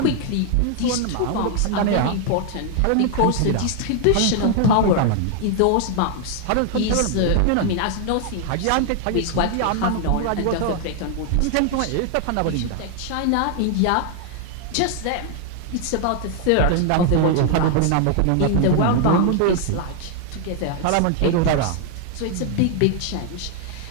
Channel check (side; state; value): both; different; correlation 0.00